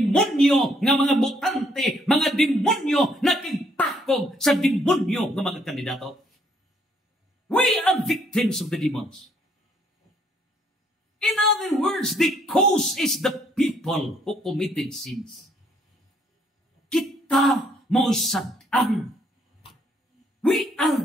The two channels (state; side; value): normal; both; correlation 0.68